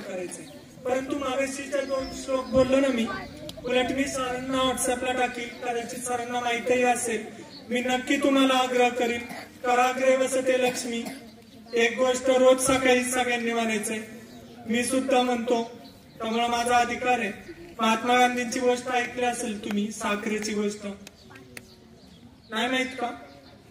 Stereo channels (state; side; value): identical; both; correlation 1.00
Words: करायचंय. परंतु मागाशीच्या 2 श्लोक बोललो ना मी, उलट मी सरांना व्हॉट्सअपला टाकील, कदाचित सरांना माहितीही असेल. मी नक्की तुम्हाला आग्रह करीन, कराग्रे वसते लक्ष्मी. एक गोष्ट रोज सकाळी सगळ्यांनी म्हणायचंय, मी सुद्धा म्हणतो, त्यामुळे माझा अधिकार आहे. महात्मा गांधींची गोष्ट ऐकली असेल तुम्ही, साखरेची गोष्ट नाही माहित का?